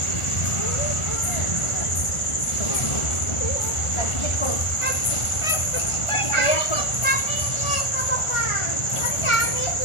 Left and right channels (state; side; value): late; right; 1.4 ms